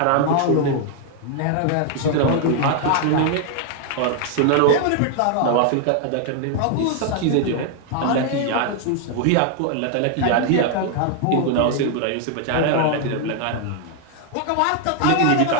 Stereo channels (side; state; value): both; different; correlation 0.00